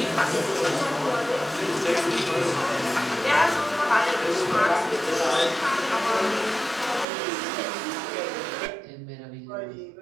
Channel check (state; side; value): drops out; left; at 7.1 s